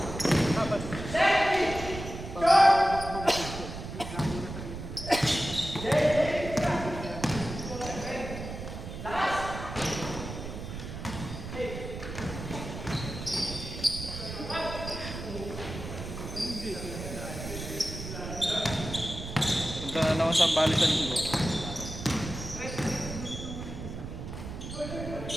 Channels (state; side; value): noise; right; rumble, 8 dB below the sound